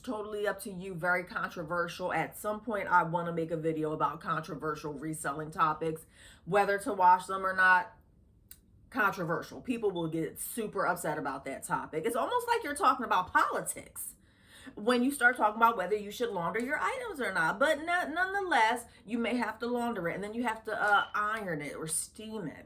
up to you. Very controversial. At some point, I want to make a video about controversial reselling topics, whether to wash them or not. Controversial. People will get super upset about that topic. It's almost like you're talking about politics when you start talking about whether you should launder your items or not. But nonetheless, you may have to launder it, and then you have to iron it or steam it,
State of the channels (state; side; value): identical; both; correlation 1.00